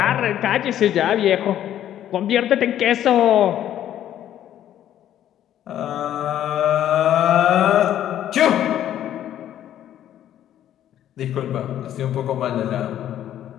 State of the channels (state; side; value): quieter; right; 11.4 dB